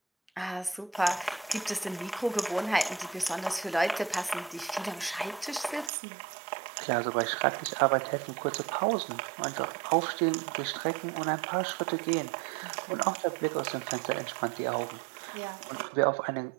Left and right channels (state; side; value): drops out; left; at 5.9 s